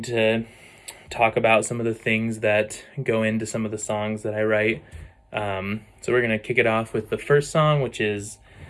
to talk about some of the things that go into some of the songs that I write. So we're gonna kick it off with the first song, which is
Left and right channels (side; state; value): both; identical; correlation 1.00